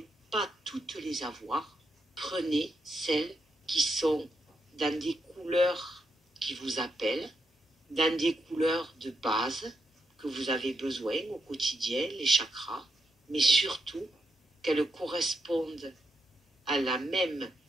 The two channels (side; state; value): both; normal; correlation 0.81